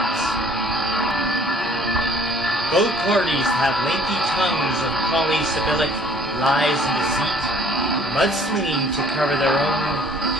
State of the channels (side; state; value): both; normal; correlation 0.55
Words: Both parties have lengthy tongues of polysyllabic lies and deceit, mudslinging to cover their own